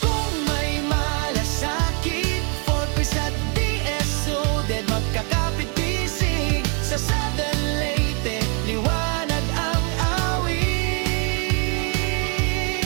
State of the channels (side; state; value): left; quieter; 37.2 dB